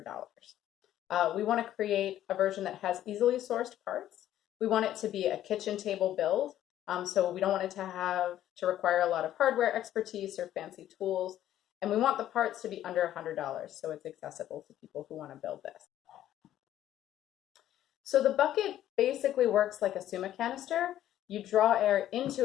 We want to create a version that has easily sourced parts. We want it to be a kitchen table build, so we don't want it to require a lot of hardware expertise or fancy tools, and we want the parts to be under $100, so it's accessible to people who want to build this. So the bucket basically works like a Suma canister. You draw air into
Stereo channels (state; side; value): quieter; right; 12.3 dB